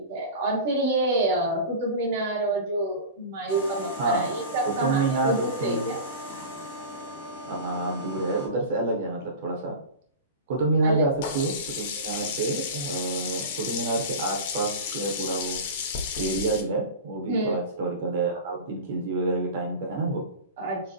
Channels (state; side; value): inverted; both; correlation -0.30